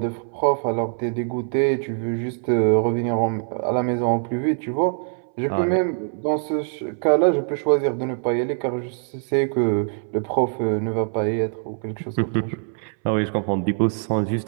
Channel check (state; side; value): silent; left; 63 dB below the other